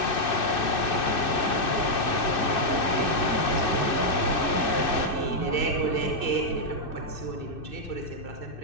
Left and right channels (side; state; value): right; late; 2.6 ms